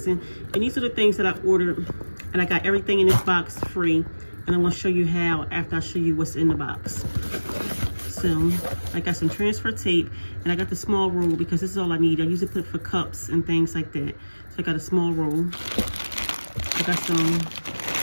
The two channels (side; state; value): both; inverted; correlation -1.00